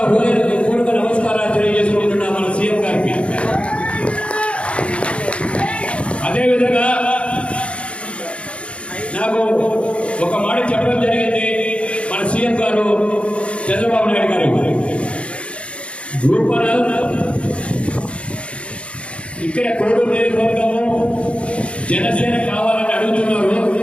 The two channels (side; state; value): right; late; 0.060 ms